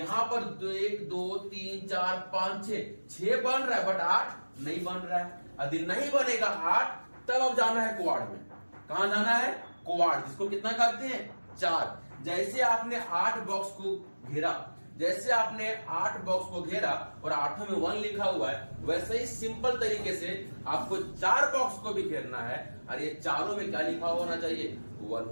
पर 1 2 3 4 5 6 बन रहा है, बट 8 नहीं बन रहा है। यदि नहीं बनेगा 8, तब अब जाना है क्वाड में। कहां जाना है? क्वाड, जिसको कितना कहते हैं? 4। जैसे आपने 8 बॉक्स को घेरा, जैसे आपने 8 बॉक्स को घेरा और 8 में 1 लिखा हुआ है, वैसे ही सिंपल तरीके से आपको 4 बॉक्स को भी घेरना है और ये चारों में क्या लिखा होना चाहिए, 1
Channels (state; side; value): inverted; both; correlation -1.00